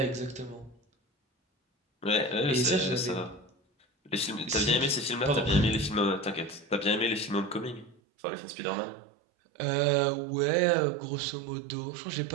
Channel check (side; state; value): left; drops out; at 8.0 s